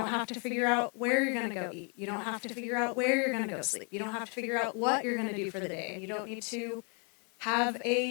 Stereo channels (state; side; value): quieter; right; 37.6 dB